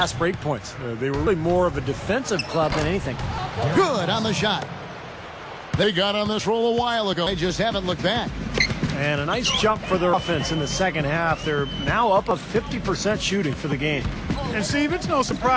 break points. They were really more of a defensive club than anything. Good on the shot. They got on this roll a while ago. They just haven't looked back. And a nice jump for their offense in the second half. They're now up of 50% shooting for the game. And Steve, it's no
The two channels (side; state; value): both; identical; correlation 1.00